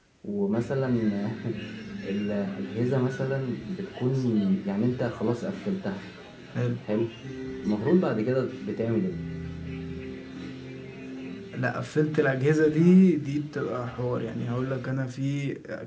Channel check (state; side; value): identical; both; correlation 1.00